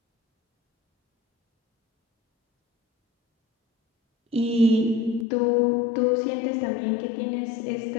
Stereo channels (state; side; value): drops out; right; at 5.2 s